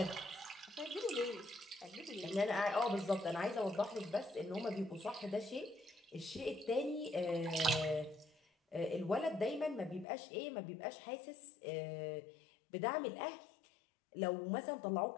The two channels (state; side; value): drops out; right; at 10.1 s